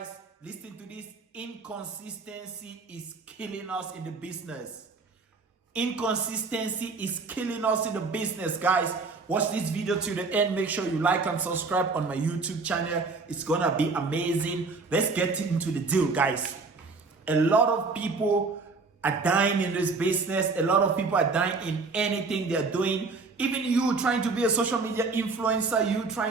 Listen to this. Inconsistency is killing us in the business. Inconsistency is killing us in the business, guys. Watch this video to the end. Make sure you like and subscribe on my YouTube channel. It's gonna be amazing. Let's get into the deal, guys. A lot of people are dying in this business. A lot of people are dying in anything they're doing. Even you trying to be a social media influencer, you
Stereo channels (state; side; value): quieter; left; 4.1 dB